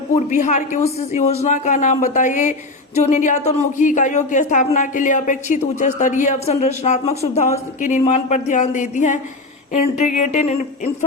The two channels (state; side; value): quieter; right; 3.0 dB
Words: बिहार की उस योजना का नाम बताइए जो निर्यातोन्मुखी इकाइयों की स्थापना के लिए अपेक्षित उच्च स्तरीय अवसंरचनात्मक सुविधाओं के निर्माण पर ध्यान देती है। Integrated